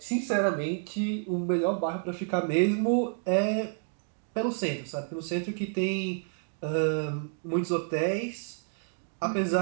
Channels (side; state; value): left; silent; 57 dB below the other